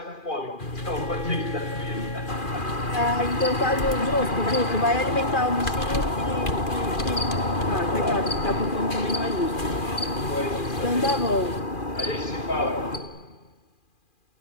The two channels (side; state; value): right; late; 2.4 ms